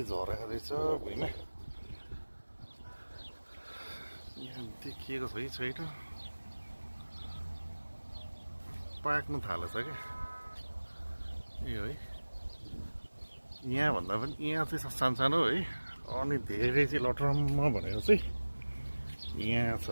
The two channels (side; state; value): both; inverted; correlation -1.00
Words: झरेको रहेछ भुइँमा। यहाँ देखिएको छ कि छैन, पाक्नु थालेछ क्या यो है। यहाँ भन्दा पनि यहाँ चाहिँ सानो है, अनि धेरै चाहिँ लटरम्म भनेको चाहिँ यहाँ